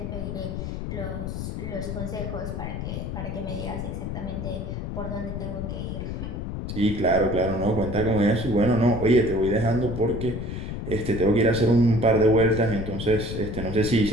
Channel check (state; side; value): noise; left; rumble, 5 dB below the sound